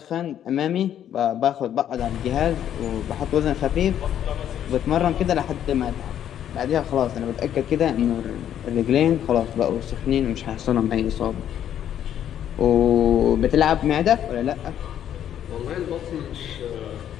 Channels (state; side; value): quieter; right; 10.3 dB